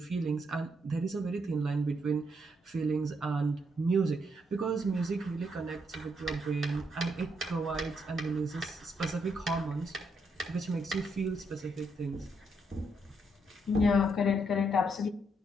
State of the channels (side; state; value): both; normal; correlation 0.76